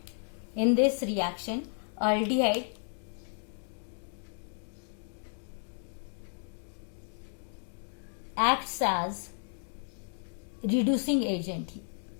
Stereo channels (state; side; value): silent; right; 56 dB below the other